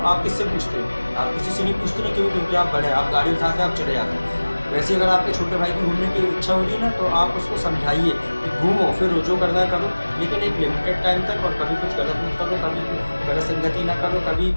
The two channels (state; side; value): inverted; both; correlation -1.00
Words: आप किससे पूछते हो? आप किसी से नहीं पूछते ना, क्यों? क्योंकि आप बड़े हैं, आप गाड़ी उठाते हैं, आप चले जाते हैं। वैसे अगर आपके छोटे भाई की घूमने की इच्छा हो रही है ना, तो आप उसको समझाइए कि घूमो, फिरो, जो करना है करो, लेकिन एक लिमिटेड टाइम तक, और कभी कुछ गलत मत करो, कभी गलत संगति ना करो, कभी